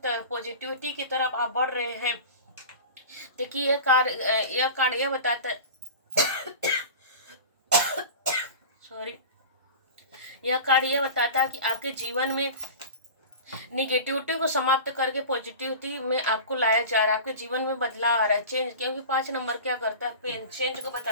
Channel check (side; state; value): both; inverted; correlation -0.34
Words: की तरफ आप बढ़ रहे हैं। देखिए यह कार्ड यह बताता है सॉरी, यह कार्ड यह बताता है कि आपके जीवन में निगेटिविटी को समाप्त करके पॉजिटिविटी में आपको लाया जा रहा है। आपके जीवन में बदलाव आ रहा है, चेंज। क्योंकि 5 नंबर क्या करता है, चेंज को